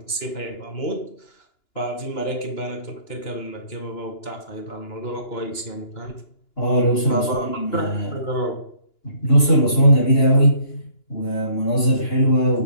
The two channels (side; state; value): right; late; 2.9 ms